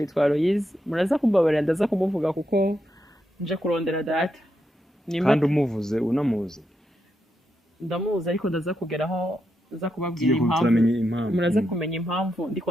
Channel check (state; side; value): normal; both; correlation 0.83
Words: yitwa Aloise. Muraza kumbabarira ndaza kumuvuga kuko nje kurondera data. Kandi umuvuze unamuzi. Ndamuzi ariko ndaza kugeraho za kubabwira impamvu. Muraza kumenya impamvu